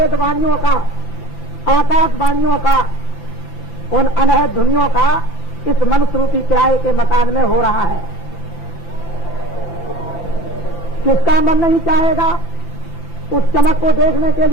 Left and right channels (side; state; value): right; late; 5.9 ms